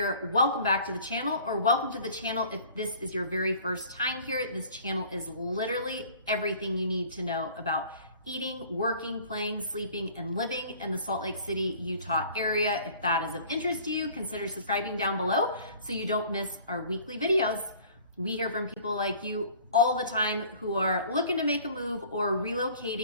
Welcome back to the channel, or welcome to the channel if this is your very first time here. This channel is literally everything you need to know about eating, working, playing, sleeping, and living in the Salt Lake City, Utah area. If that is of interest to you, consider subscribing down below so you don't miss our weekly videos. We hear from people like you all the time who are looking to make a move or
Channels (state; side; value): inverted; both; correlation -0.50